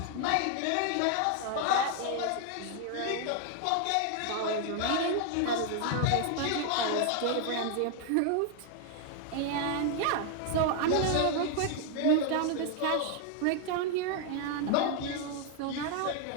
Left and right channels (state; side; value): different; both; correlation 0.00